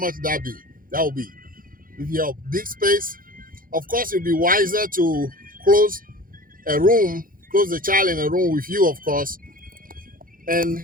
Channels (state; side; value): late; left; 0.41 ms